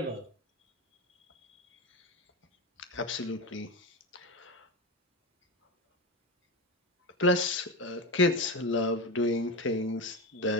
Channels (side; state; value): both; normal; correlation 0.19